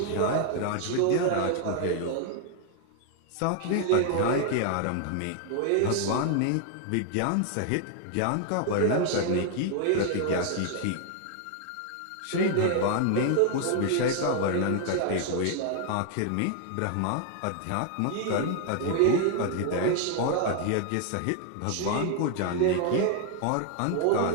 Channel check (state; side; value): different; both; correlation 0.00